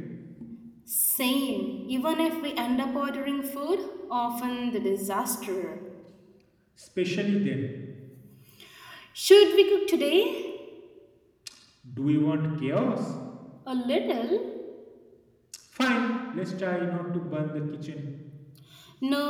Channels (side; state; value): both; identical; correlation 1.00